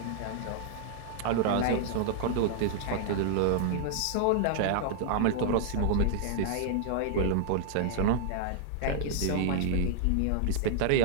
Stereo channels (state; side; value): different; both; correlation -0.01